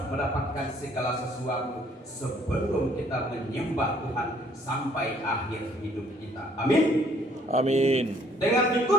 mendapatkan segala sesuatu sebelum kita menyembah Tuhan sampai akhir hidup kita. Amin. Amin. Dengan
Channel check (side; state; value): both; normal; correlation 0.62